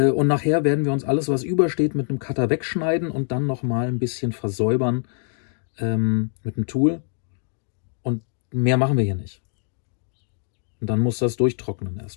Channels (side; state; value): right; silent; digital silence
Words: nachher werden wir uns alles, was übersteht, mit einem Cutter wegschneiden und dann nochmal ein bisschen versäubern mit dem Tool. Und mehr machen wir hier nicht. Und dann muss das durchtrocknen